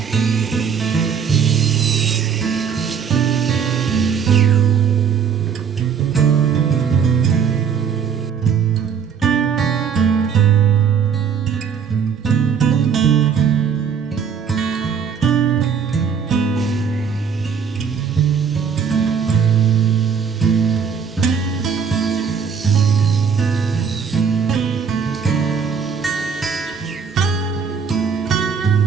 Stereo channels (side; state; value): left; quieter; 6.9 dB